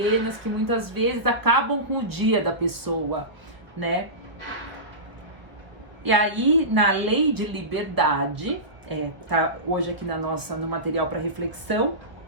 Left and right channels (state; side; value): late; left; 1.3 ms